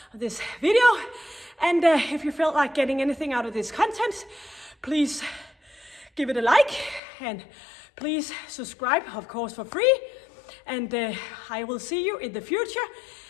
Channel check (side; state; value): right; drops out; at 7.0 s